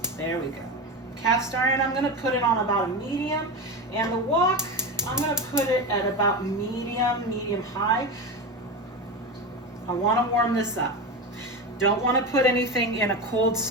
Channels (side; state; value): both; normal; correlation 0.21